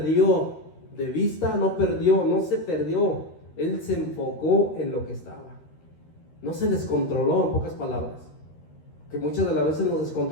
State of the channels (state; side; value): late; right; 13 ms